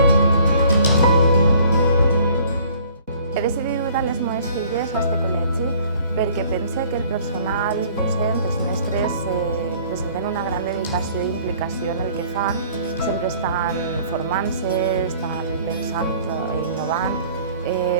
He decidit dur les meves filles a aquest col·legi perquè pense que el personal docent, els mestres, presenten una gran dedicació i implicació en el que fan. Sempre estan formant-se, estan pensant i innovant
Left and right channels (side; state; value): both; inverted; correlation -0.54